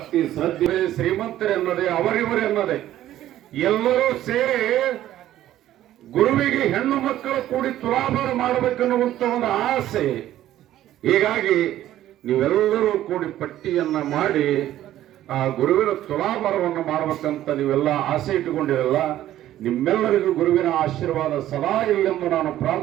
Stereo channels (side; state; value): left; quieter; 13.1 dB